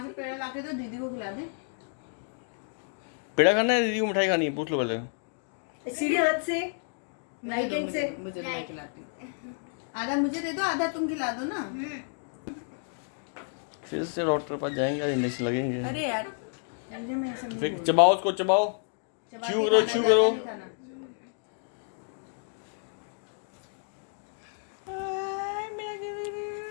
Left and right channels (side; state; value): right; silent; 58 dB below the other